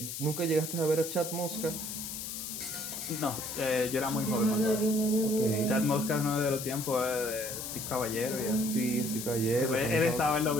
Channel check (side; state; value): left; noise; hiss, 6 dB below the sound